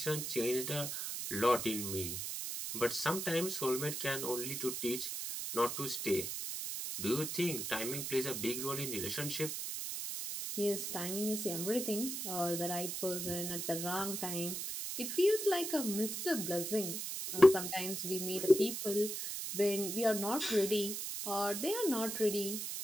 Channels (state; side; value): noise; right; hiss, 4 dB below the sound